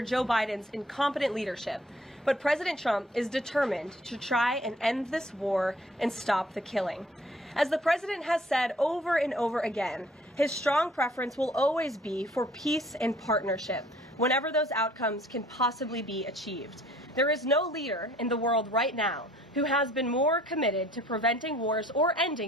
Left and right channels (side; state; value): both; normal; correlation 0.56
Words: Joe Biden's incompetent leadership, but President Trump is determined to try and end this war and stop the killing. As the president has said over and over again, his strong preference will always be for peace and partnership, whenever those outcomes can possibly be achieved. There is no leader in the world right now who has been more committed to preventing wars or